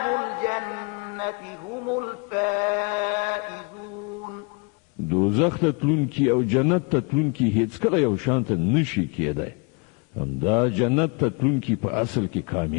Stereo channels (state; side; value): quieter; right; 31.9 dB